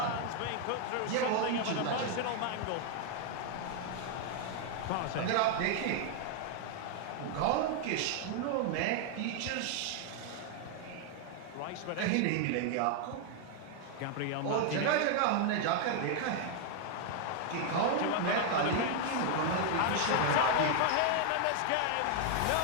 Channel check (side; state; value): both; different; correlation 0.00